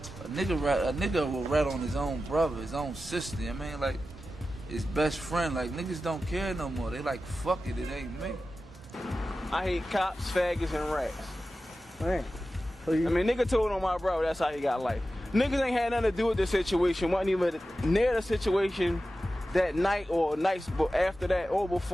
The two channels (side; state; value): both; normal; correlation 0.93